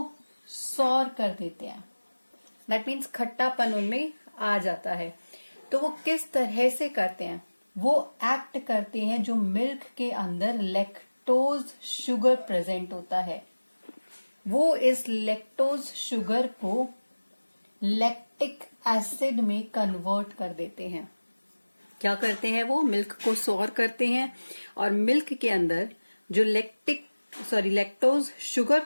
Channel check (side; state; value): both; inverted; correlation -1.00